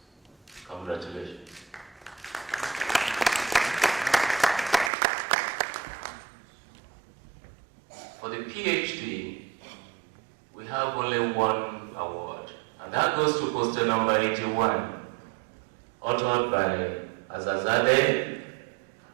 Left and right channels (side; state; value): left; drops out; at 4.9 s